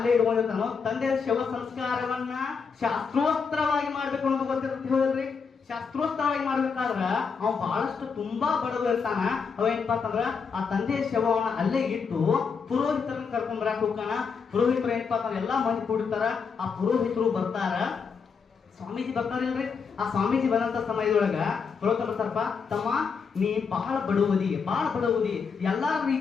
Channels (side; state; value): right; quieter; 5.7 dB